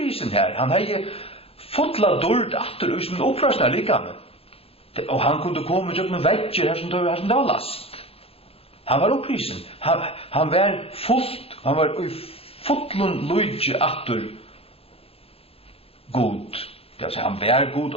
her. Han har fotla dårligt atter ut som opprasna likame. Og han kunde komme ut med vekker her som det var last. Han var opprisen. Han var fullt. Han var i fotlun lujtje atter god. Det vil si, han var god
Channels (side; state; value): right; late; 0.28 ms